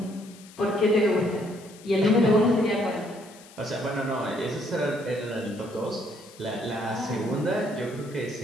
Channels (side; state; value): left; noise; hiss, 22 dB below the sound